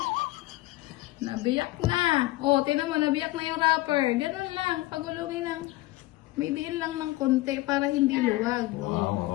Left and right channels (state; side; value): quieter; right; 18.8 dB